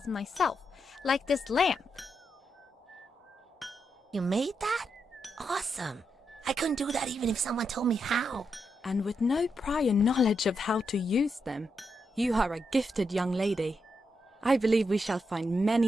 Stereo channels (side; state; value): both; normal; correlation 0.83